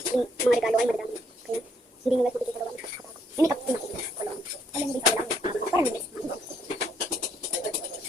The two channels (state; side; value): normal; both; correlation 0.70